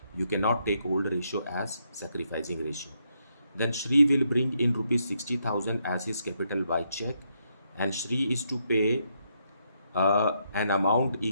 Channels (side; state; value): both; inverted; correlation -0.77